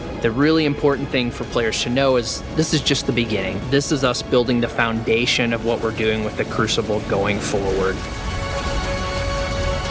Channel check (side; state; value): both; identical; correlation 1.00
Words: the really important thing for players to know is this is just the beginning. This is us building the foundation of what we're doing with the Crucible going forward.